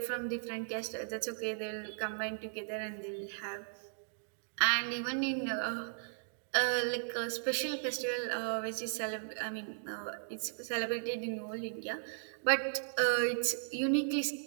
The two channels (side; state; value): left; silent; digital silence